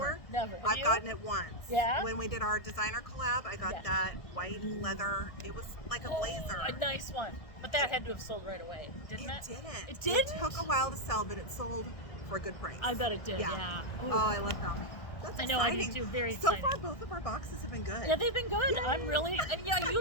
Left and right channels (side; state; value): right; late; 1.7 ms